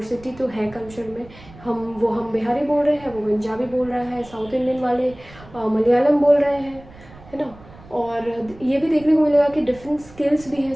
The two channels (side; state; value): right; noise; rumble, 21 dB below the sound